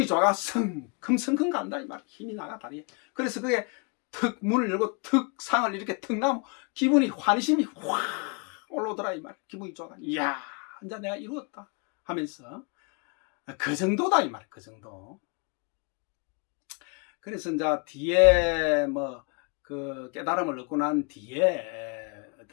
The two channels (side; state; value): right; quieter; 34.8 dB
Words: 좋아가 성큼성큼 간다 이 말. 힘이 나가 다리에. 그래서 그게 턱 문을 열고 턱 상을 이렇게 턱 나면 기분이 환심이 확 올라오더라 이 말. 기분이 좋아가 이야 이제 내가 이루었다 하면서 그 정도다 이 말. 그 정도. 그래서 이제 뒤에 뭐 그 깨달음을 얻고 난 뒤에